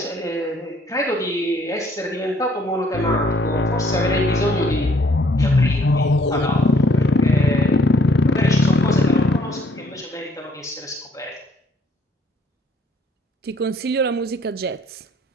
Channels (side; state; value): both; normal; correlation 0.63